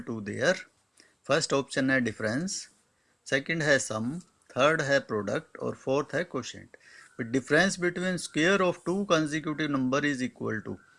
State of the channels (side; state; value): both; identical; correlation 1.00